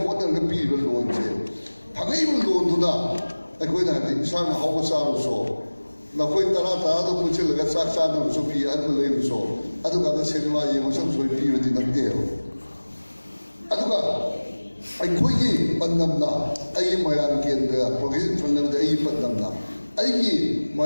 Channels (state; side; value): inverted; both; correlation -1.00